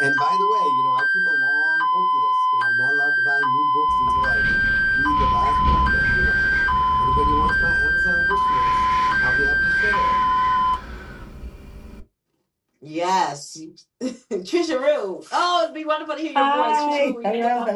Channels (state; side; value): identical; both; correlation 1.00